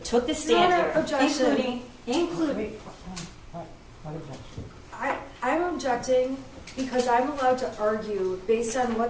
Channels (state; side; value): identical; both; correlation 1.00